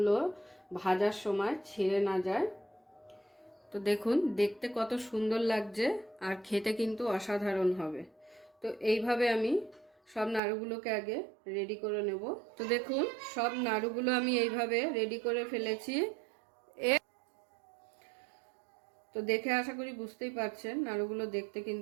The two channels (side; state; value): left; drops out; at 10.4 s